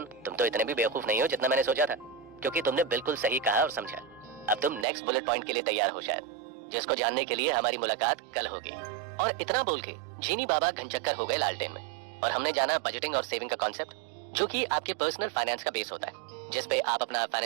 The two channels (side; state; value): left; drops out; at 4.9 s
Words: तुम तो इतने भी बेवकूफ नहीं हो जितना मैंने सोचा था, क्योंकि तुमने बिल्कुल सही कहा और समझा। अब तुम नेक्स्ट बुलेट पॉइंट के लिए तैयार हो शायद, जिसको जानने के लिए हमारी मुलाकात कल होगी। और इतना बोल के जीनी बाबा घनचक्कर हो गए लालटेन में, और हमने जाना बजटिंग और सेविंग का कॉन्सेप्ट, जो कि आपके पर्सनल फाइनेंस का बेस होता है, जिस पे आप अपना